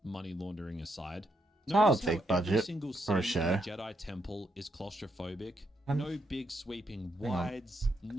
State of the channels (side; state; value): both; normal; correlation 0.79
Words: money laundering aside. Not a Notice how big every budget single for a scene in show. the Jedi Temple is claustrophobic. And- No big sweeping Hang on. wides,